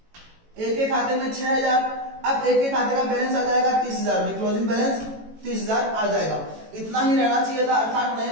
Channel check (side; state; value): left; late; 18 ms